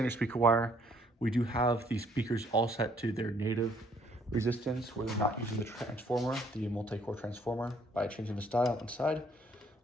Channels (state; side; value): normal; both; correlation 0.64